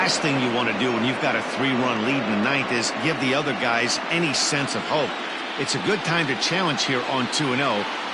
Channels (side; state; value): both; identical; correlation 1.00